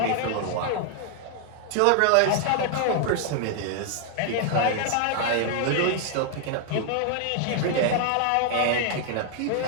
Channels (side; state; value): both; different; correlation 0.00